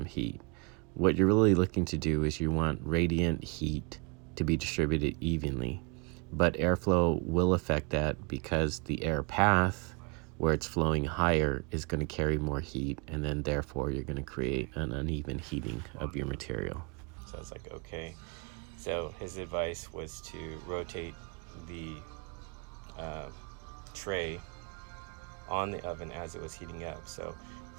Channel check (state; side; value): quieter; left; 32.1 dB